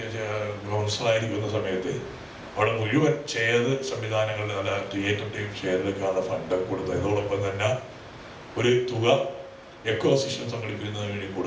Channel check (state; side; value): identical; both; correlation 1.00